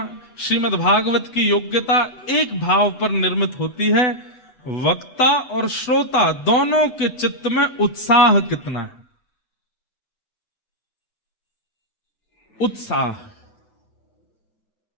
श्रीमद् भागवत की योग्यता एक भाव पर निर्मित होती है, वक्ता और श्रोता दोनों के चित्त में उत्साह कितना है। उत्साह,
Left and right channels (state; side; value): late; right; 8.3 ms